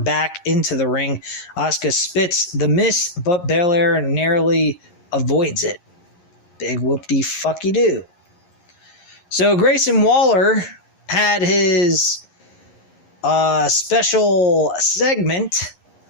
into the ring. Asuka spits the mist, but Belair narrowly avoids it. Big whoop-de-fucky-doo. So Grayson Waller had his special segment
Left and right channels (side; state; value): right; late; 11 ms